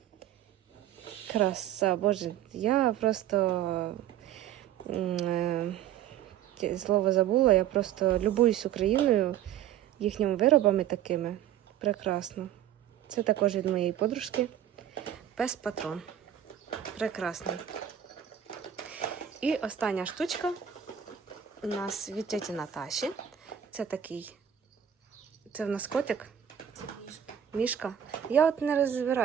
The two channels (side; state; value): left; quieter; 10.4 dB